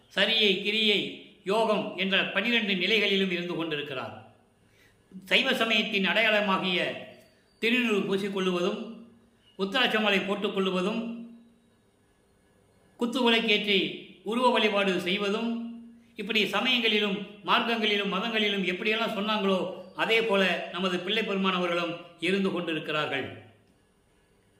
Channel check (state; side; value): identical; both; correlation 1.00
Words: சரியை, கிரியை, யோகம் என்ற 12 நிலைகளிலும் இருந்து கொண்டிருக்கிறார். சைவ சமயத்தின் அடையாளமாகிய திருநூறு பூசிக்கொள்ளுவதும், உத்தராட்சமாலை போட்டுக்கொள்ளுவதும், குத்து விளக்கேற்றி உருவ வழிபாடு செய்வதும், இப்படி சமயங்களிலும் மார்க்கங்களிலும் மதங்களிலும் எப்படியெல்லாம் சொன்னாங்களோ அதே போல நமது பிள்ளை பெருமானவர்களும் இருந்து கொண்டிருக்கிறார்கள்.